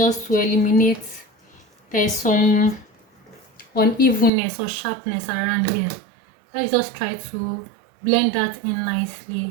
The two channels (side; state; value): left; drops out; at 4.3 s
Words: to eliminate there's some unevenness or sharpness around here. Let's just try to blend that in